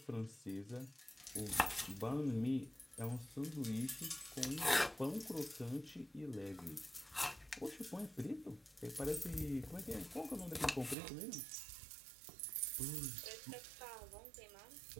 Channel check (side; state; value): left; drops out; at 11.0 s